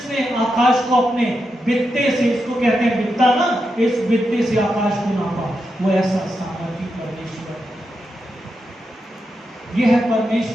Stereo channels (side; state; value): both; normal; correlation 0.86